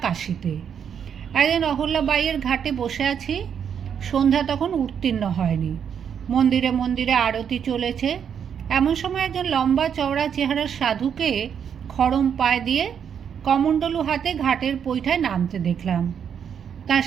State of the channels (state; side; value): quieter; left; 7.9 dB